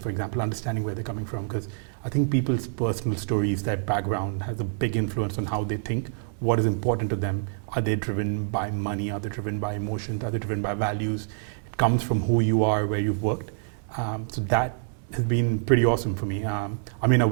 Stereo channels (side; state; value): left; silent; digital silence